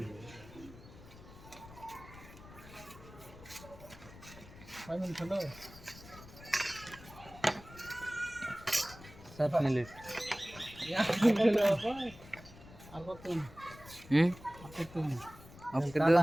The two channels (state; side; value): noise; left; rumble, 18 dB below the sound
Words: ফাইনাল খেলো 7 মিনিট আর কত হুম আর কত ওকে কাটা